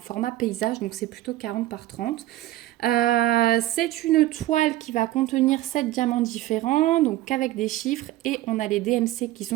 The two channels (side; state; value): left; quieter; 15.5 dB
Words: paysage, donc c'est plutôt 40 par 30. C'est une toile qui va contenir 7 diamants différents, donc avec des chiffres, et on a les DMC qui